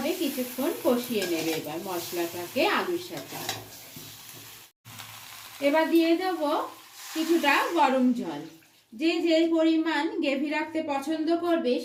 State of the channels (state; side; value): identical; both; correlation 1.00